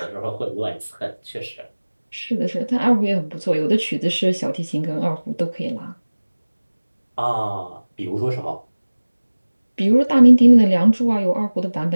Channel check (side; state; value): both; inverted; correlation -1.00